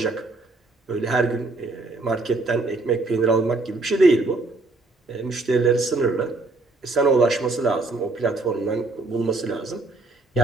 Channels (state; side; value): quieter; left; 3.2 dB